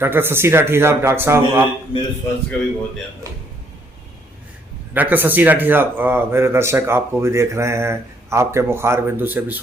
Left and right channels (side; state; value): both; normal; correlation 0.68